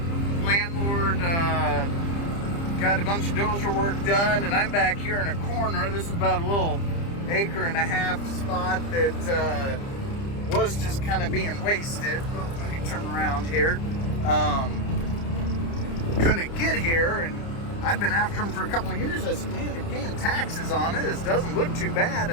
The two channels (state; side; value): late; right; 30 ms